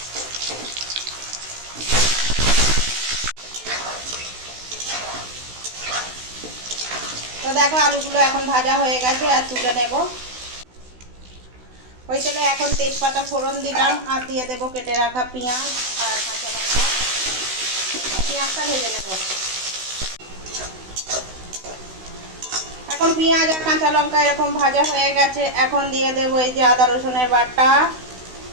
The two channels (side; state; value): left; late; 16 ms